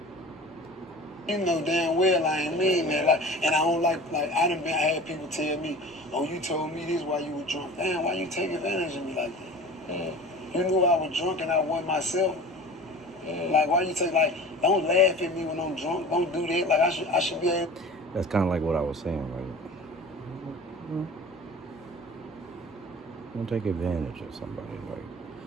You know damn well I ain't mean that. Like, and I don't like I had people tell me, oh, you told me this while you were drunk. Damn, why you take advantage of me like that? You knew I was drunk and I wasn't myself. Like, why you take, don't laugh at me when I'm drunk. Don't do that. Like, I should be able. That's kind of like what I was saying. Like, don't take advantage of somebody, like,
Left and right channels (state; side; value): normal; both; correlation 0.39